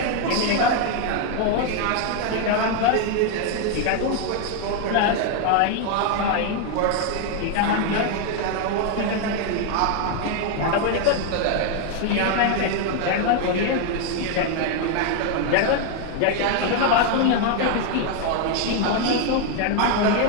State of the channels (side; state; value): both; different; correlation 0.01